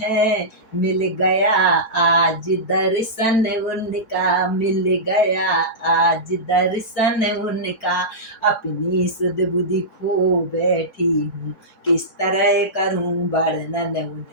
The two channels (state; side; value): late; right; 3.6 ms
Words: मिल गया आज दर्शन उनका, मिल गया आज दर्शन उनका। अपनी सुध बुद्धि खो बैठी हूँ, किस तरह करूँ वर्णन